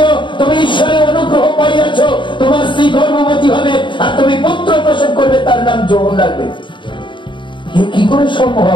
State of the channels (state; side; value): late; right; 0.23 ms